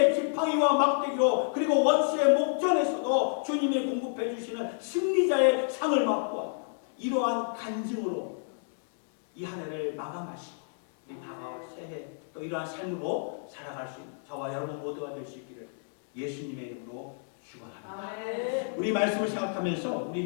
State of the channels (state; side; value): silent; right; 58 dB below the other